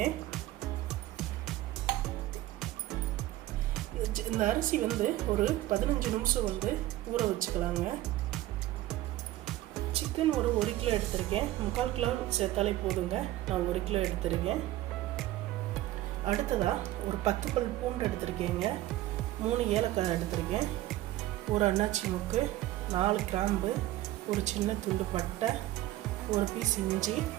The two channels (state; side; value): quieter; left; 15.7 dB